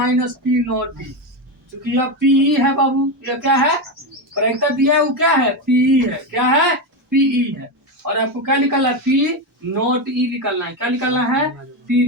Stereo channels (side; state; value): both; normal; correlation 0.13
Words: - P नॉट डी, क्योंकि यह पीई है बाबू। यह क्या है? प्रायिकता दिया है वो क्या है? पीई है। क्या है? पीई है। और आपको क्या निकालना है? पी नॉट ई निकालना है। क्या निकालना है?